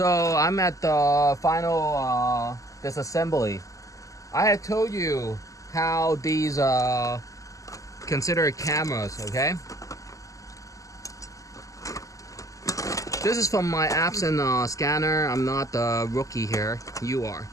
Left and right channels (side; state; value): right; late; 0.16 ms